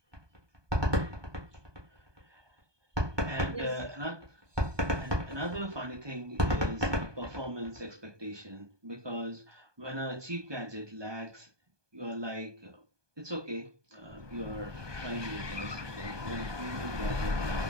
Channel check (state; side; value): late; left; 1.2 ms